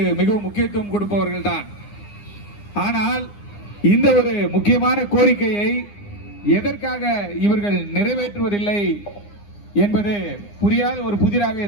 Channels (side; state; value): right; late; 9.8 ms